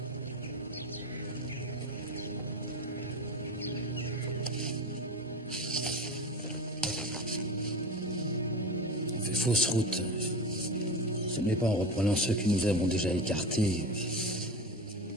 On fait fausse route. Ce n'est pas en reprenant ceux que nous avons déjà écartés.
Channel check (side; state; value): both; normal; correlation 0.27